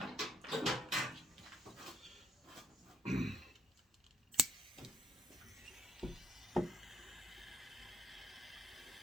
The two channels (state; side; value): normal; both; correlation 0.76